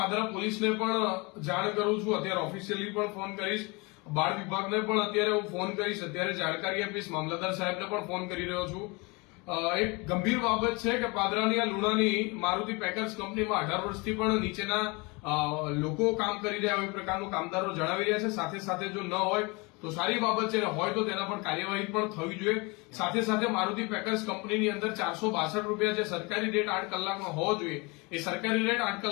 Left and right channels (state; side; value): quieter; right; 27.5 dB